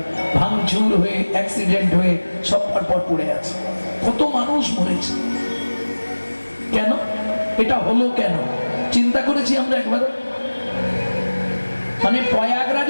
ভাঙচুর হয়ে, অ্যাক্সিডেন্ট হয়ে সব পরপর পড়ে আছে। কত মানুষ মরেছে। কেন এটা হলো? কেন চিন্তা করেছি আমরা একবার? মানে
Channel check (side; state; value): both; inverted; correlation -1.00